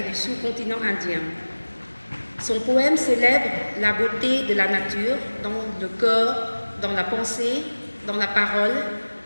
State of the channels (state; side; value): inverted; both; correlation -1.00